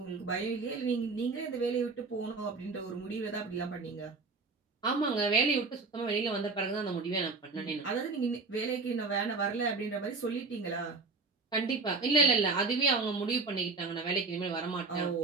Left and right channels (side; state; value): left; quieter; 4.1 dB